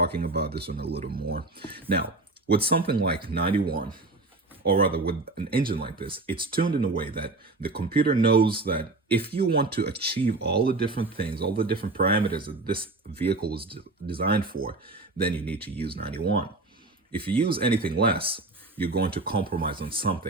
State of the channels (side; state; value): left; quieter; 3.2 dB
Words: about this one a little more. Now, with something like 91, or rather with an engine like this, it's tuned in a way that the computer knows that if you want to achieve all the different things, all the different parameters that this vehicle was designed for, then you need to use 91. If you use anything less, you're going to compromise on